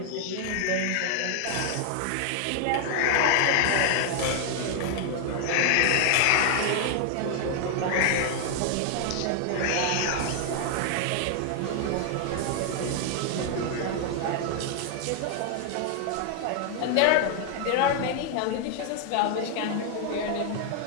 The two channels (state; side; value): different; both; correlation 0.00